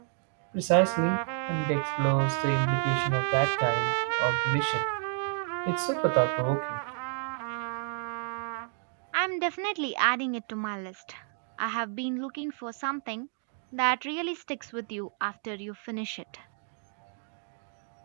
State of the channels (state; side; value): silent; left; 57 dB below the other